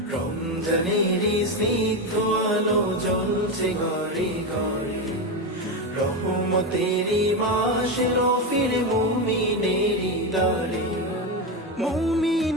রমজানেরই স্নিগ্ধ আলো জ্বলছে ঘরে ঘরে, রহমতেরই মাস এলো ফিরে মুমিনেরই দ্বারে।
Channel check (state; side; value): normal; both; correlation 0.13